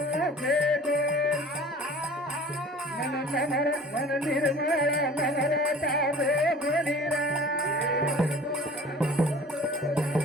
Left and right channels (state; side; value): normal; both; correlation 0.45